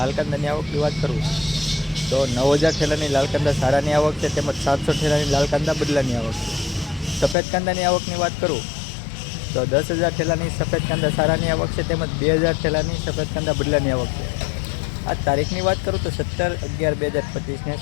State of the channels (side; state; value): right; drops out; at 7.4 s